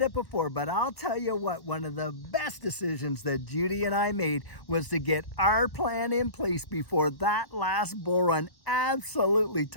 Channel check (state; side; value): late; right; 1.1 ms